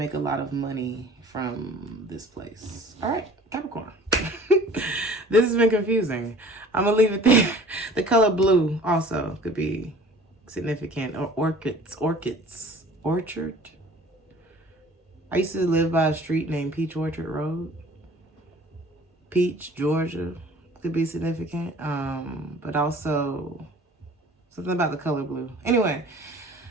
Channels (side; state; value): both; normal; correlation 0.48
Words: a lot of money from this place. All right, Capricorn. This has been confusing. I'm going to leave it there. The color blue also could be significant. Or orchids. Orchard. I used to live by a street named Peach Orchard Road. Peach, Georgia could be significant. But also something about the color blue. Anyway,